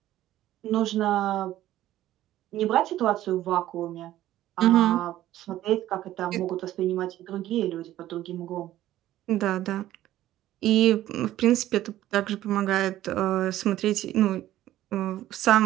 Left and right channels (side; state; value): left; quieter; 13.8 dB